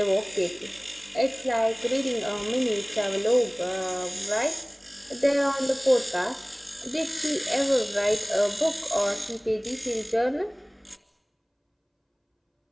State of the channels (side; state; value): both; identical; correlation 1.00